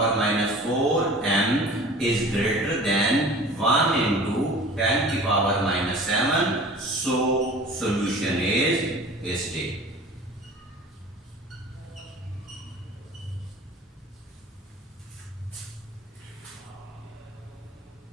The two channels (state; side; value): normal; both; correlation 0.43